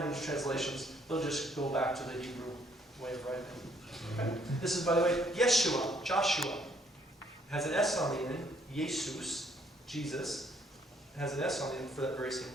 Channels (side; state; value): both; normal; correlation 0.67